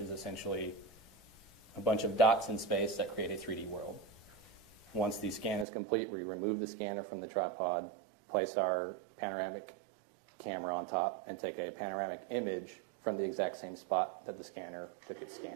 is essentially a bunch of dots in space that create a 3D world. Once the scan is complete, we remove the scanner from the tripod, place our panoramic camera on top, and take a panoramic image from the exact same spot that the scanner took its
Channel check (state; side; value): drops out; left; at 5.7 s